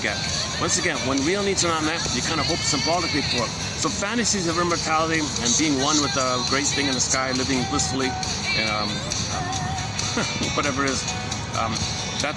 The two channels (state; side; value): identical; both; correlation 1.00